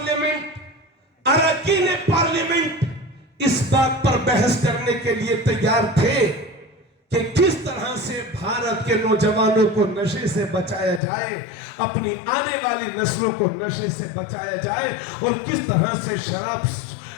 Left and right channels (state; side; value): drops out; right; at 11.0 s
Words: अरकान पार्लियामेंट इस बात पर बहस करने के लिए तैयार थे कि किस तरह से भारत के नौजवानों को नशे से बचाया जाए, अपनी आने वाली नस्लों को नशे से बचाया जाए, और किस तरह से शराब